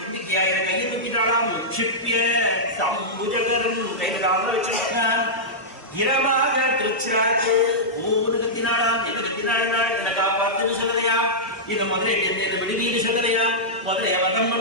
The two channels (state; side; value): normal; both; correlation -0.11